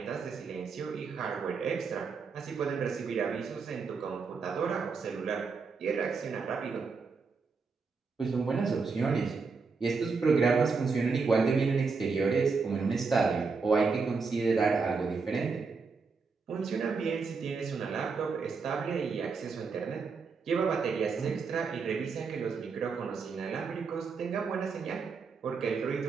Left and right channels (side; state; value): left; quieter; 4.9 dB